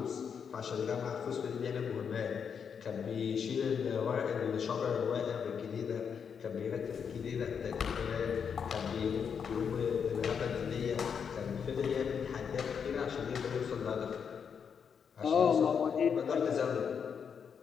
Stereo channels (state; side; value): quieter; right; 6.9 dB